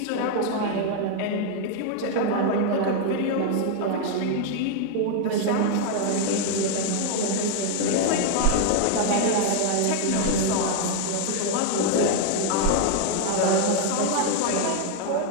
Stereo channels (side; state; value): both; different; correlation 0.00